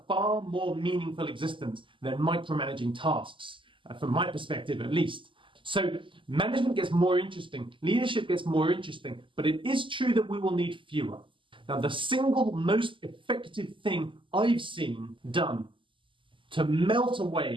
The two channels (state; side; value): late; left; 0.25 ms